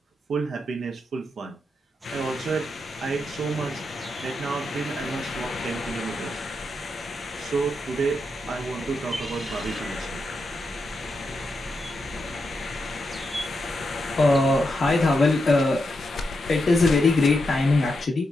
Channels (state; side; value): normal; both; correlation 0.85